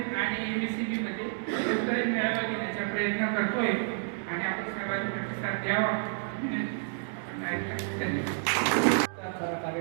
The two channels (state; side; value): silent; left; digital silence